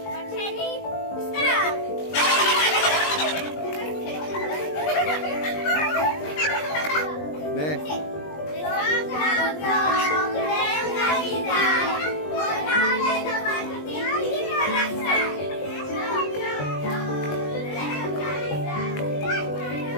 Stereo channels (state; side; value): late; right; 20 ms